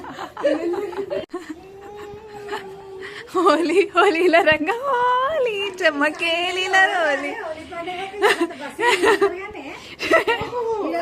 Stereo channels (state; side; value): identical; both; correlation 1.00